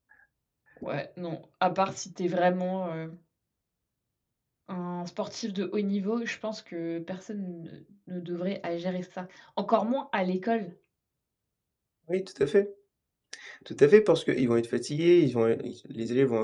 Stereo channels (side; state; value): both; identical; correlation 1.00